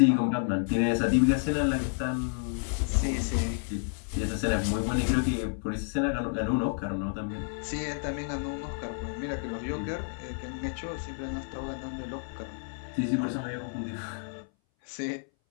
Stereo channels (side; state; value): right; silent; 58 dB below the other